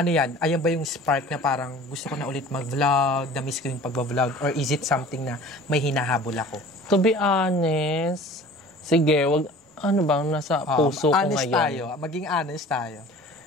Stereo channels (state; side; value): normal; both; correlation 0.44